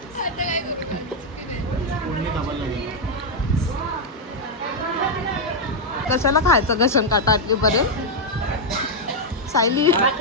कशाला खायचं घसन काटा आटलीपर्यंत? सायली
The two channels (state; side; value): normal; both; correlation -0.01